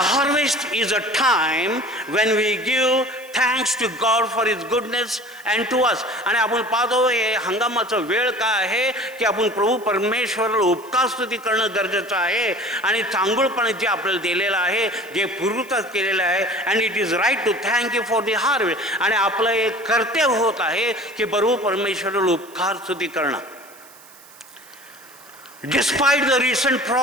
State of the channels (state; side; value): noise; right; hiss, 23 dB below the sound